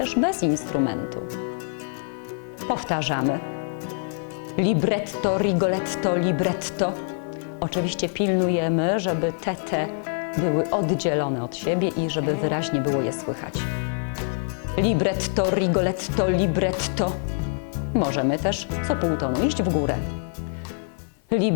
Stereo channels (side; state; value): right; silent; 56 dB below the other